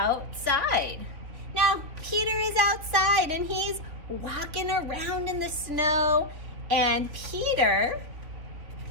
Now, Peter is outside and he's walking around in the snow, and Peter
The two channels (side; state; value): left; late; 3.4 ms